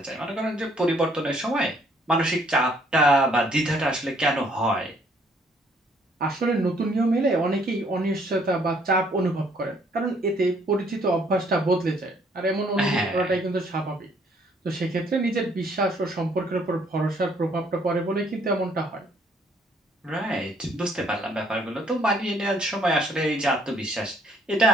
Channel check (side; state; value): both; normal; correlation 0.64